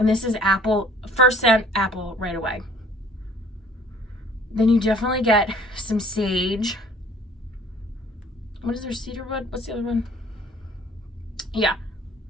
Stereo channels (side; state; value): both; normal; correlation 0.54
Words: this is apple, first scent, apple right away. Then you definitely get some sage. What is there, cedarwood? What's the other one? Yeah.